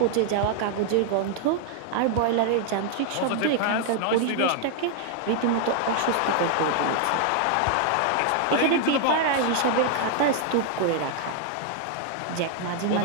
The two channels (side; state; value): both; different; correlation 0.00